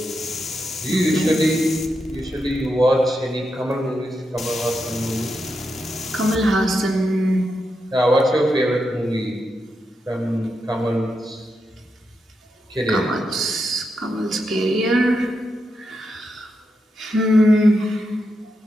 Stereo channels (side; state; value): both; normal; correlation 0.85